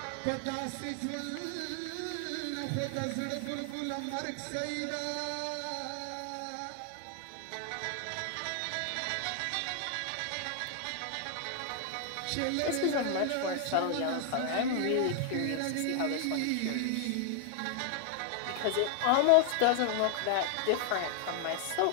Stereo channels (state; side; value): different; both; correlation 0.00